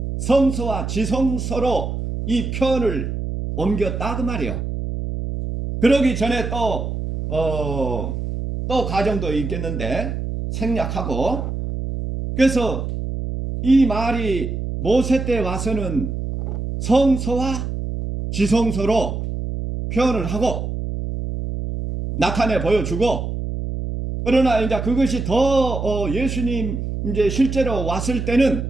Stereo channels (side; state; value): right; noise; hum, 4 dB below the sound